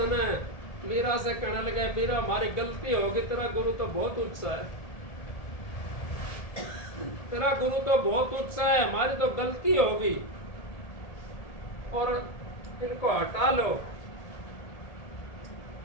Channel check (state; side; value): late; right; 1.7 ms